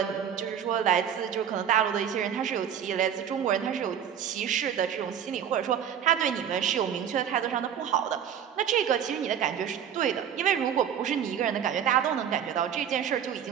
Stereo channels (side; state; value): left; quieter; 9.0 dB